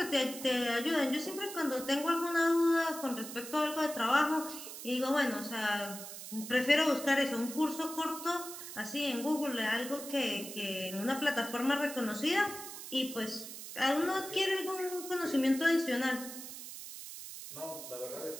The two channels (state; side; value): noise; right; hiss, 10 dB below the sound